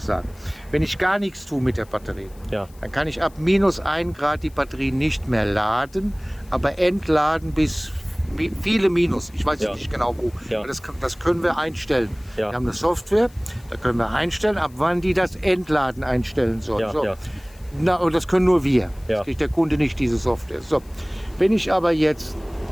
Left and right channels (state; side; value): noise; left; hiss, 27 dB below the sound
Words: sagen. Wenn ich gar nichts tue mit der Batterie, Ja. dann kann ich ab minus 1 Grad die Batterie nicht mehr laden, aber entladen bis viele Minus. Ich weiß Ja. nicht genau wo. Ja. Aber das können wir einstellen. Ja. Wir haben eine Software, da können wir einstellen, ab wann die das Entladen einstellen soll. Ja, So. ja. Na, und das können nur wir. Ja. Das kriegt der Kunde nicht, diese Software. So. Wenn ich aber jetzt